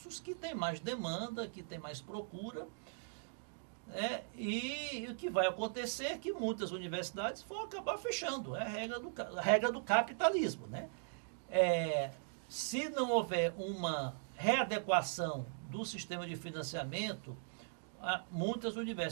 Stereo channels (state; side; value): silent; left; digital silence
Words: que têm mais demanda, que têm mais procura. E o que vai acontecer é que muitas universidades vão acabar fechando. É a regra do capitalismo. Né? Se não houver uma readequação do sistema de financiamento, muitas